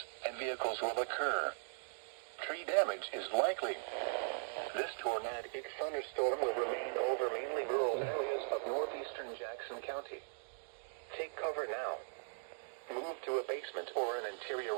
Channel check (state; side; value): silent; left; digital silence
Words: and vehicles will occur. Tree damage is likely. This tornadic thunderstorm will remain over mainly rural areas of northeastern Jackson County. Take cover now. Move to a basement or an interior